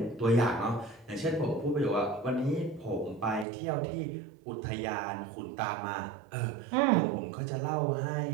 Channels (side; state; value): left; drops out; at 3.5 s